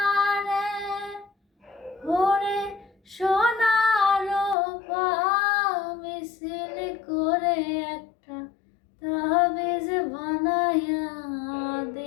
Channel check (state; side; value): drops out; right; at 4.5 s